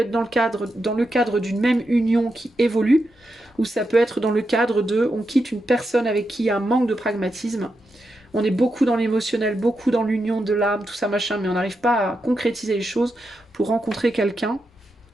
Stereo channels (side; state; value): both; normal; correlation 0.86